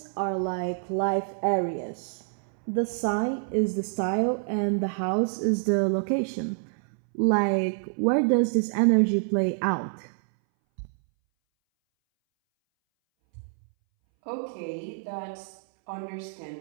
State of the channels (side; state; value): left; silent; 60 dB below the other